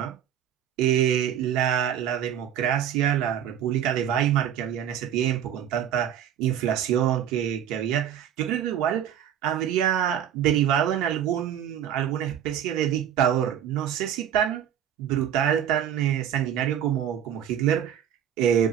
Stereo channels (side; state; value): left; quieter; 9.8 dB